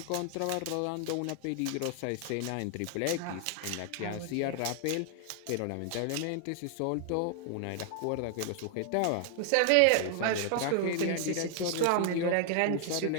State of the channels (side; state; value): both; different; correlation 0.00